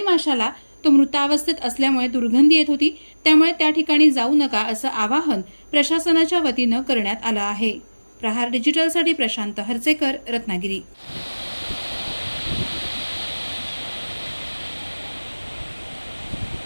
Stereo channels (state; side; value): inverted; both; correlation -1.00